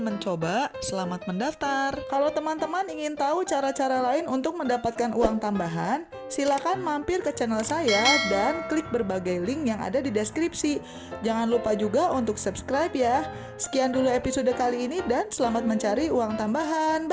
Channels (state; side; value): identical; both; correlation 1.00